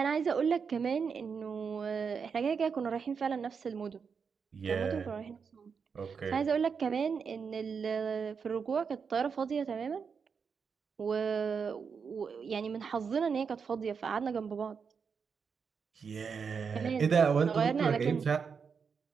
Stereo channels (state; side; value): quieter; left; 6.0 dB